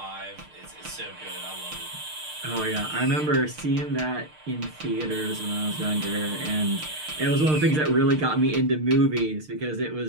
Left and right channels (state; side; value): late; left; 6.6 ms